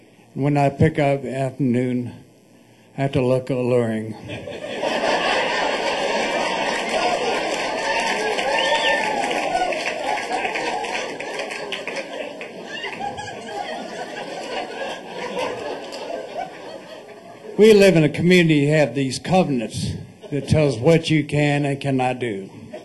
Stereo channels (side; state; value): both; identical; correlation 1.00